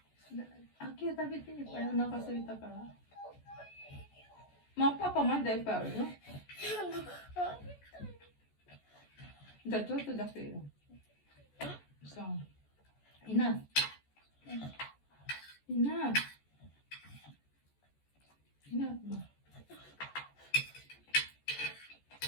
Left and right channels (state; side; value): late; right; 14 ms